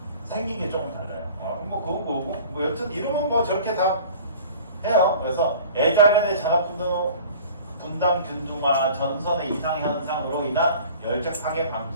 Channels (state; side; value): inverted; both; correlation -0.44